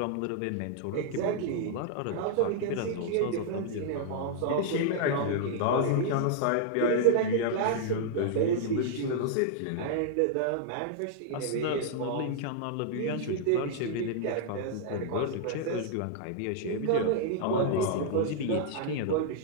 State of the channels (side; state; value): both; different; correlation -0.01